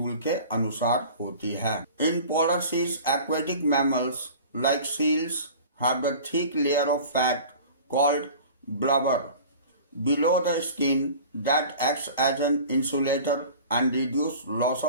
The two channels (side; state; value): both; inverted; correlation -0.41